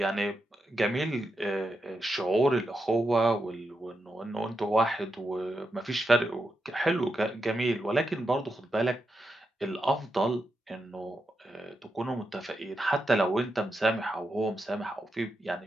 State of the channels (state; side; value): normal; both; correlation 0.86